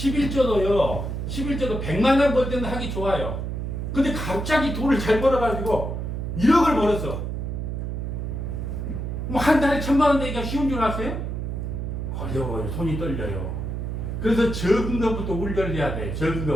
11조도 100만 원 벌 때는 하기 좋아요. 근데 갑자기 돈을 잘 벌어가지고 1억을 벌었어. 뭐 한 달에 1,000만 원 내기가 쉬운 줄 아세요? 어려워요. 손이 떨려요. 그래서 적은 것부터 울려야 돼. 적은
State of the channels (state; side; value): noise; right; hum, 4 dB below the sound